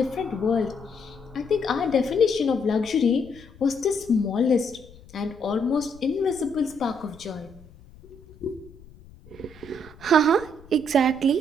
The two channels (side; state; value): left; noise; rumble, 22 dB below the sound